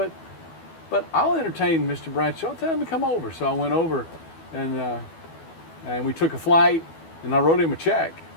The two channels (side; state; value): right; late; 12 ms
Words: I'll entertain Mr. Bradshaw. Tell him to come over. So I went over, and we took a flight, and I wrote him a check.